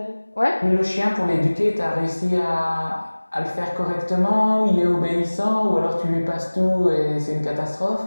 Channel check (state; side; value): inverted; both; correlation -1.00